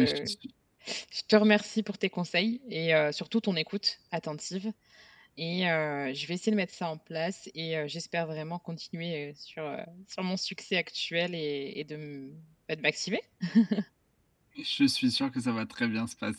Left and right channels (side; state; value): both; identical; correlation 1.00